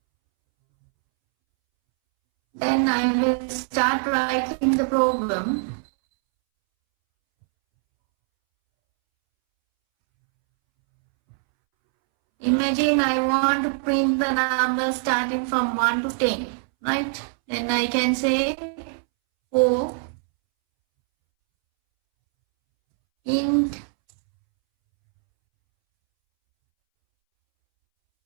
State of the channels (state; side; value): silent; left; 64 dB below the other